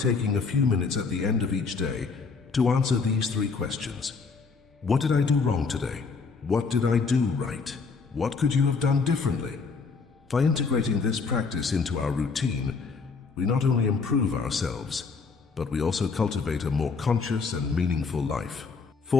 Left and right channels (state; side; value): quieter; right; 4.8 dB